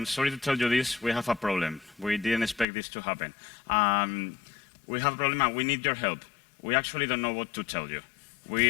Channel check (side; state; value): right; drops out; at 2.7 s